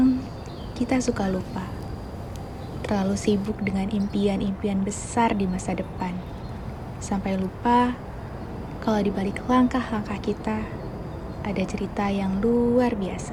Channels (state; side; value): identical; both; correlation 1.00